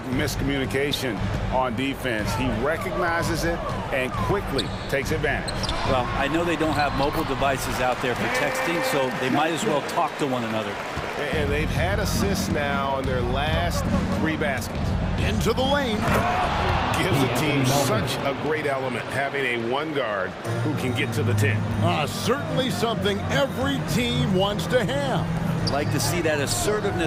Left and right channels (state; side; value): identical; both; correlation 1.00